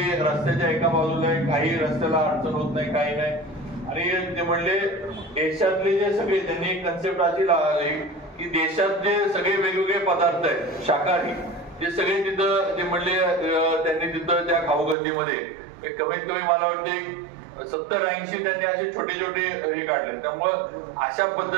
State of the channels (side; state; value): left; drops out; at 15.0 s